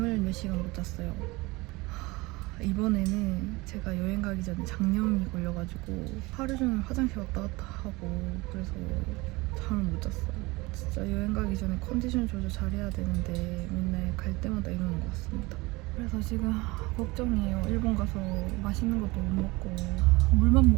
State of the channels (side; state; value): left; quieter; 23.0 dB